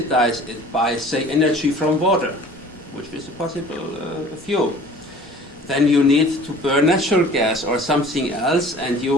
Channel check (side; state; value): both; normal; correlation 0.47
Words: it by, say, energy from water, which is a possible fuel, then you need to burn natural gas or something else, and